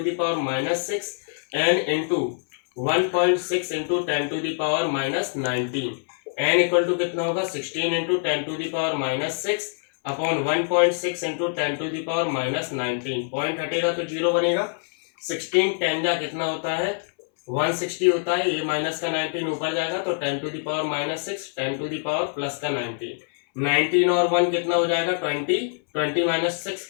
power -6, n into 1.6 into 10 to the power -19। n equal to कितना होगा, 16 into 10 to the power -6 upon 1.6 into 10 to the power -19। Point हटेगा तो 0 बनेगा। 16 10 जा कितना होता है, 160 होता है, ये माइनस का 19 ऊपर जाएगा तो 10 to the power -6, 10 to the power plus का 19, 19 और 1 कितना हो जाएगा, 20, 20 - 6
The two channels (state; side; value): silent; right; 62 dB below the other